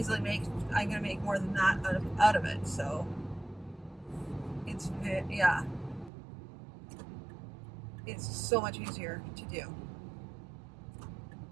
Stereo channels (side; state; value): left; drops out; at 6.1 s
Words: I'm gonna make more than that out of it. So it's so much easier to do.